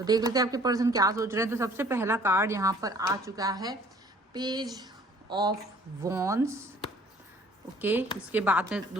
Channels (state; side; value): normal; both; correlation 0.54